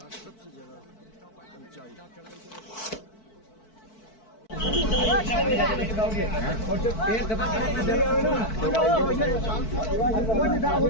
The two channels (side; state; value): right; late; 4.6 ms